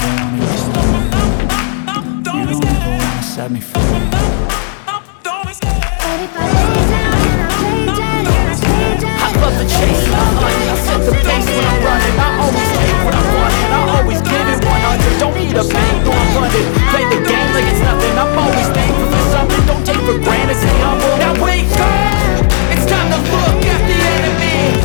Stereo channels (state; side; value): silent; right; digital silence